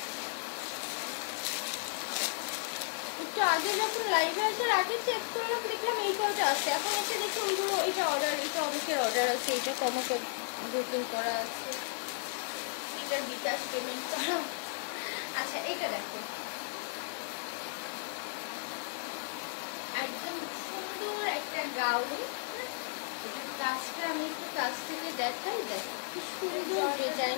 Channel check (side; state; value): right; silent; digital silence